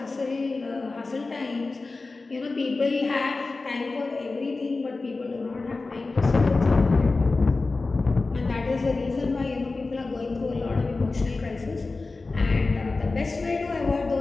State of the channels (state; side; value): quieter; right; 3.6 dB